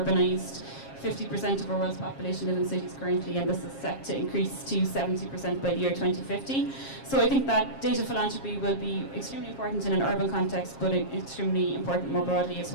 50% of our world's population live in cities currently, and this is set to increase to 70% by the year 2050. So I think that data philanthropy will be extremely important in an urban context, but extremely important more broadly as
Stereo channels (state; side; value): late; right; 7.4 ms